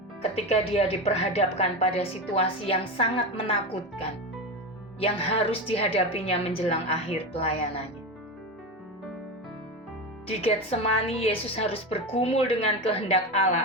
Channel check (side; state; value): both; normal; correlation 0.20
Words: ketika Dia diperhadapkan pada situasi yang sangat menakutkan yang harus dihadapinya menjelang akhir pelayanannya. Di Getsemani, Yesus harus bergumul dengan kehendak